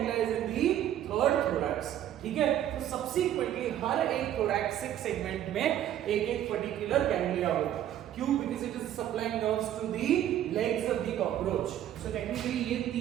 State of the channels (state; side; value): quieter; left; 11.5 dB